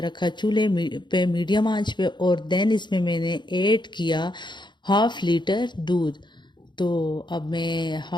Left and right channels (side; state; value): right; late; 0.22 ms